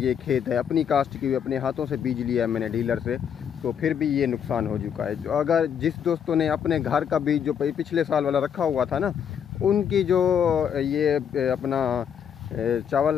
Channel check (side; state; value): right; quieter; 8.2 dB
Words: खेत है, अपनी कास्ट की हुई, अपने हाथों से बीज लिया है मैंने डीलर से। तो फिर भी ये नुकसान हो चुका है। जो अगर जिस दोस्तों ने अपने घर का बीज जो पिछले साल वाला रखा हुआ था ना, उनकी जो ये अपना चावल